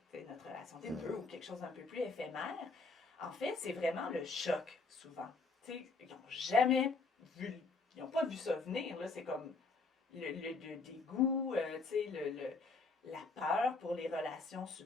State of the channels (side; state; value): right; quieter; 4.0 dB